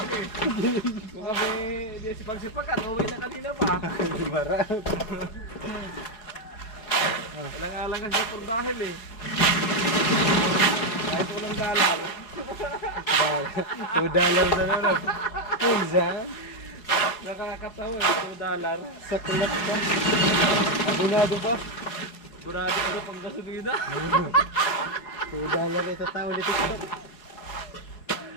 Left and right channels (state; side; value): late; right; 4.7 ms